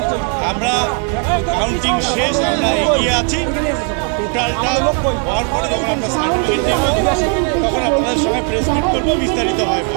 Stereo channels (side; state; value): left; quieter; 39.8 dB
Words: আমরা কাউন্টিং শেষ, আমরা এগিয়ে আছি। টোটালটা হওয়ার পরে যখন আমরা সার্টিফিকেট নেব তখন আপনাদের সঙ্গে প্রেস মিট করবো, বিস্তারিত হয়।